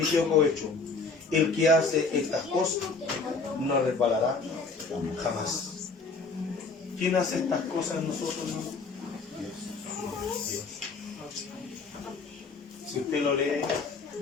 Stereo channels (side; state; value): right; quieter; 4.1 dB